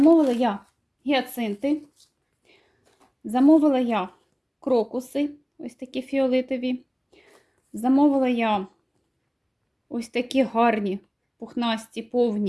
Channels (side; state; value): both; identical; correlation 1.00